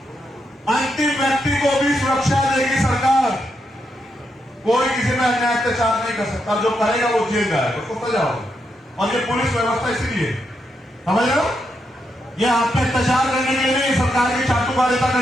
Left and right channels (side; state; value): both; normal; correlation 0.82